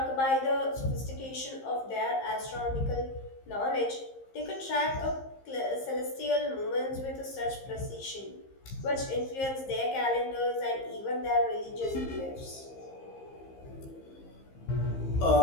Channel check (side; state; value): right; late; 15 ms